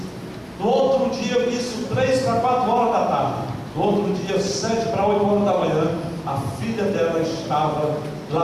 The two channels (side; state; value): both; identical; correlation 1.00